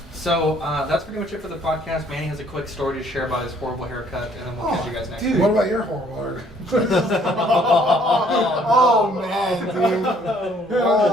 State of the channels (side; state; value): both; normal; correlation 0.62